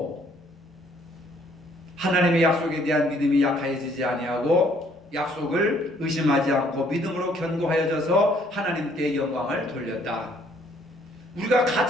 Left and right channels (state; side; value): normal; both; correlation 0.63